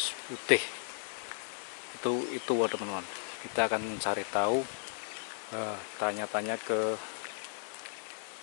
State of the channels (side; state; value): right; silent; digital silence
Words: putih itu teman-teman. Kita akan cari tahu, tanya-tanya ke